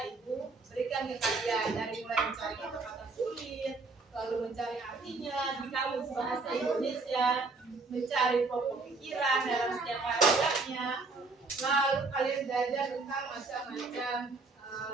Ibu berikan ke kalian, dari mulai mencari kata-kata sulit, lalu mencari artinya di kamus bahasa Indonesia, mencari pokok pikiran dalam setiap paragrafnya, lalu kalian belajar tentang macam-macam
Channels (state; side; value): quieter; left; 3.8 dB